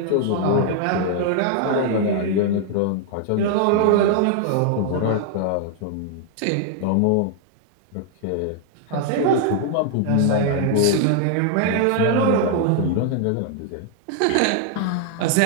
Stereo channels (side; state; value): both; different; correlation 0.00